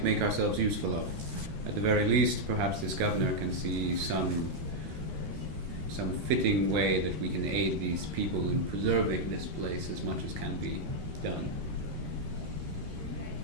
make ourselves useful of. At the very least, perhaps this governor can see some fitting way that we can aid these people in preserving this place as much as can be done.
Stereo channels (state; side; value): late; left; 13 ms